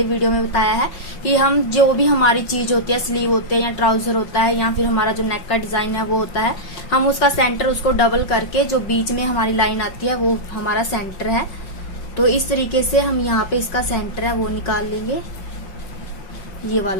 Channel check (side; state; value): right; late; 5.5 ms